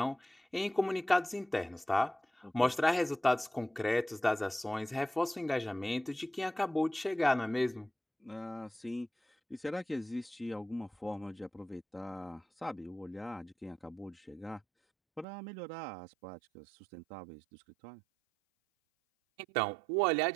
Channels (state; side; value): drops out; left; at 15.2 s